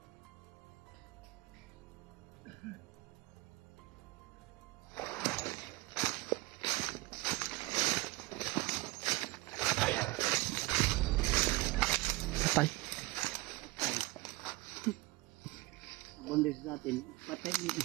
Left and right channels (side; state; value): left; quieter; 21.4 dB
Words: Patay. Bondes natin. Patay dito.